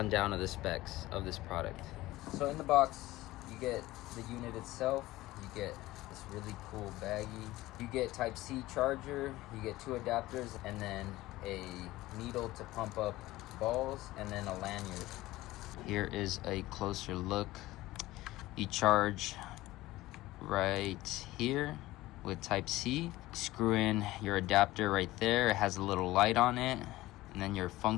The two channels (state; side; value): quieter; right; 17.6 dB